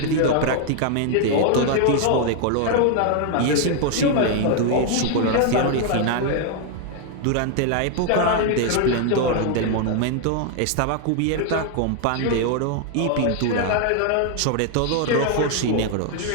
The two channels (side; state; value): both; different; correlation 0.00